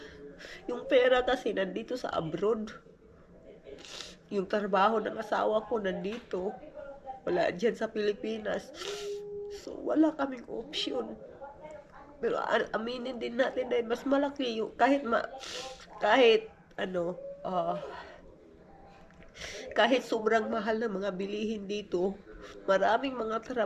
yung pera kasi nandito sa abroad. Yung trabaho ng asawa ko nandito. Wala dyan sa Pilipinas. So, wala kaming option. Pero aminin din natin dahil mas malaki yung kahit sobrang mahal na mga bilihin dito, maraming mga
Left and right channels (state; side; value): identical; both; correlation 1.00